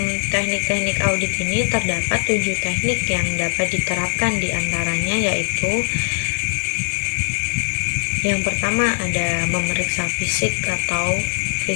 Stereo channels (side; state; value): right; silent; digital silence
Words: teknik-teknik audit ini terdapat 7 teknik yang dapat diterapkan, diantaranya yaitu yang pertama ada memeriksa fisik atau